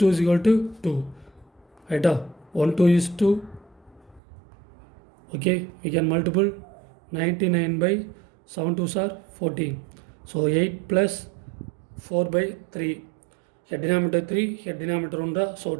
is equal to 2. Right? 1 2 is 2. Okay, we can multiple 99 by 7 2s are 14. So 8 plus 4 by 3. Here denominator 3, here denominator 1. So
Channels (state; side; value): drops out; left; at 4.2 s